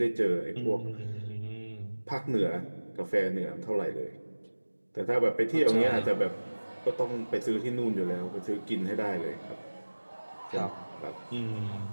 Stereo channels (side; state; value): both; inverted; correlation -1.00